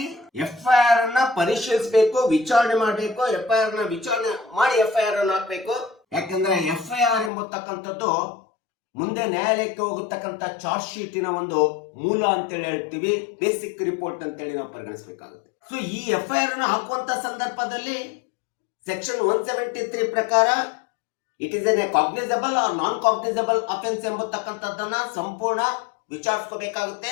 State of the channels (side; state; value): right; drops out; at 7.3 s